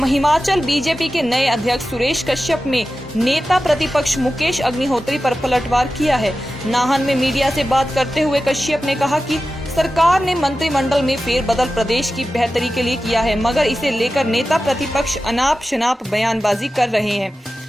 हिमाचल बीजेपी के नए अध्यक्ष सुरेश कश्यप में नेता प्रतिपक्ष मुकेश अग्निहोत्री पर पलटवार किया है। नाहन में मीडिया से बात करते हुए कश्यप ने कहा कि सरकार ने मंत्रिमंडल में फेरबदल प्रदेश की बेहतरी के लिए किया है, मगर इसे लेकर नेता प्रतिपक्ष अनाप शनाप बयानबाजी कर रहे हैं।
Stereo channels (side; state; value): both; normal; correlation 0.94